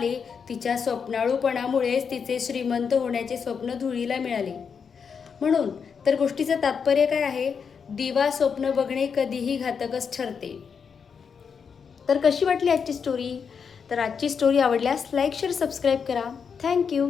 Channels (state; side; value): quieter; right; 6.3 dB